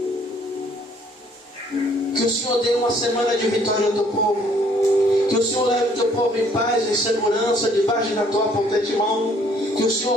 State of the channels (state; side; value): normal; both; correlation 0.62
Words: que o Senhor dê uma semana de vitória ao Teu povo. Que o Senhor leve o Teu povo em paz e segurança debaixo da Tua potente mão. Que o